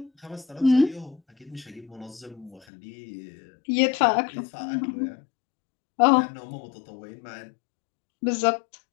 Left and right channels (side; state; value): right; drops out; at 2.6 s